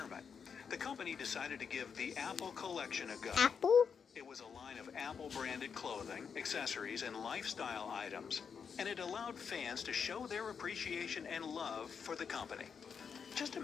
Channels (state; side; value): quieter; right; 6.5 dB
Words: the company decided to give the Apple collection a go. Apple? It was a line of Apple-branded clothing, accessories, and lifestyle items, and it allowed fans to show their appreciation and love for the company. Just